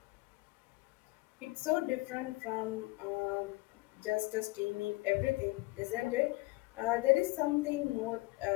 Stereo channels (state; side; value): quieter; right; 22.7 dB